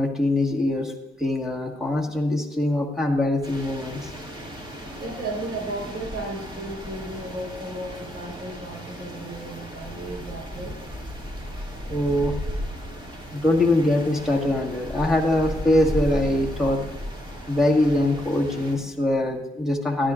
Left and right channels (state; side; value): normal; both; correlation 0.79